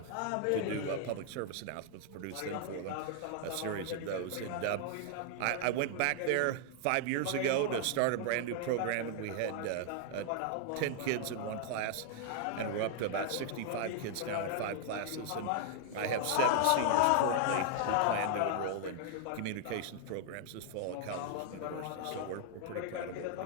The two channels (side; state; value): both; different; correlation 0.00